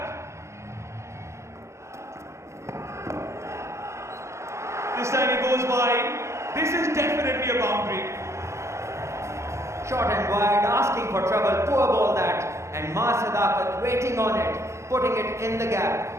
This time he goes wide. This is definitely a boundary. Short and wide, asking for trouble, poor ball that. And Sadakat waiting on it, putting it in the gap.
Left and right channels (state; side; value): late; left; 0.14 ms